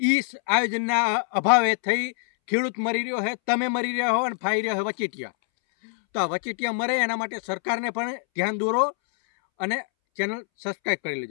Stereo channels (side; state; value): right; silent; 62 dB below the other